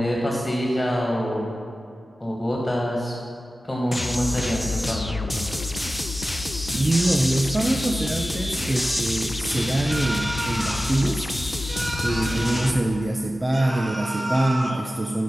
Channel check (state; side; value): normal; both; correlation 0.95